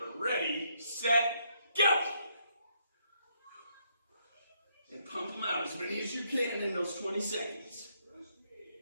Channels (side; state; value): both; inverted; correlation -0.73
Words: Ready, set, go! And pump them out as many as you can in those 20 seconds.